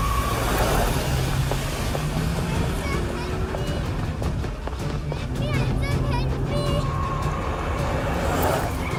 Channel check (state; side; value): identical; both; correlation 1.00